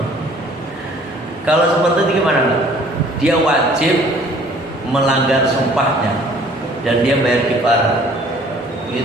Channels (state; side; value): normal; both; correlation 0.55